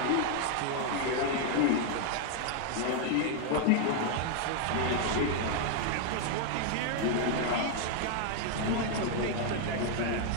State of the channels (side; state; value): both; different; correlation 0.00